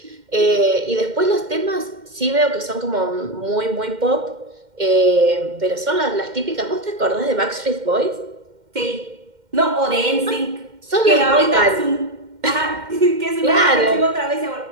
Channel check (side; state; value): left; late; 2.1 ms